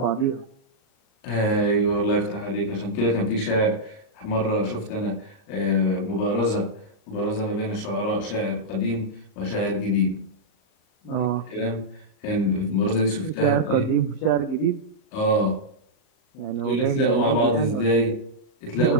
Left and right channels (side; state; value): right; late; 37 ms